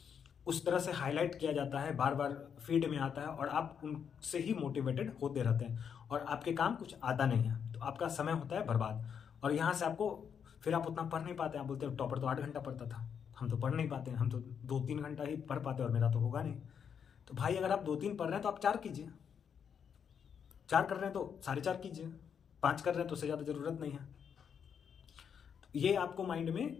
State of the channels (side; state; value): right; quieter; 7.4 dB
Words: उस तरह से हाईलाइट किया जाता है, बार बार फीड में आता है और आप उनसे ही मोटिवेटेड होते रहते हैं और आपके काम कुछ आता नहीं है, तो आपका समय होता है बर्बाद। और यहाँ से आपको फिर आप उतना पढ़ नहीं पाते। आप बोलते हो टॉपर तो 8 घंटा पढ़ता था, हम तो पढ़ नहीं पाते, हम तो 2-3 घंटा ही पढ़ पाते और मेरा तो होगा नहीं। तो भाई अगर आप 2-3 पढ़ रहे हैं तो आप 4 कीजिए, 4 कर रहे हैं तो 4.5 कीजिए, 5 कर रहे हैं तो उससे ज़्यादा ज़रूरत नहीं है। तो ये आपको माइंड